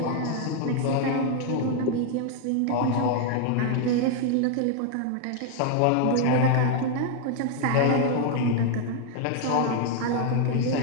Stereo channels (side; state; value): both; different; correlation 0.00